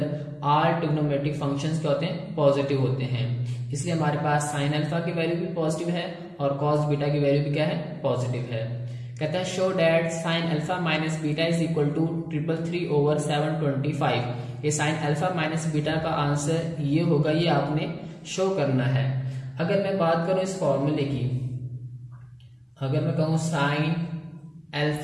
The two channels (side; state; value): both; identical; correlation 1.00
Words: ऑल ट्रिग्नोमेट्रिक फंक्शंस क्या होते हैं, पॉजिटिव होते हैं। इसलिए हमारे पास साइन अल्फा की वैल्यू भी पॉजिटिव है और कॉस बीटा की वैल्यू भी क्या है, पॉजिटिव है। कहता है show that sine alpha minus beta is equal to 333/725। ये साइन अल्फा माइनस बीटा का आंसर ये होगा, ये आपने शो करना है। अगर मैं बात करूं इस फॉर्मूले की, अगर मैं कहूं साइन